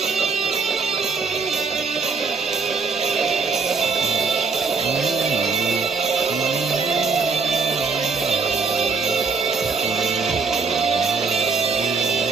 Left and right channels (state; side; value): quieter; left; 4.6 dB